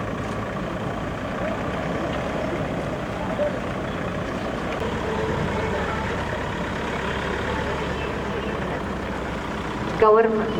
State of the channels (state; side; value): identical; both; correlation 1.00